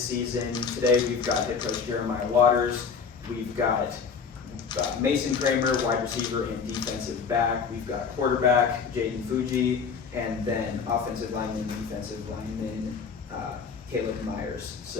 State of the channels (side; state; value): right; quieter; 5.8 dB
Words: season. Today we've got head coach Jeremiah Waters. We've got Mason Kramer, wide receiver and defensive back. We've got quarterback Jayden Fuji, and then offensive lineman, defensive lineman Caleb Myers.